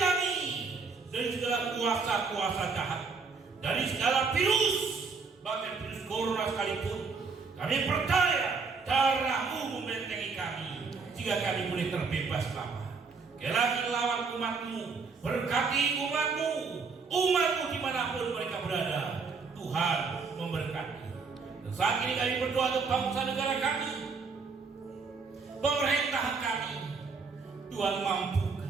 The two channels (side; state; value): left; quieter; 4.8 dB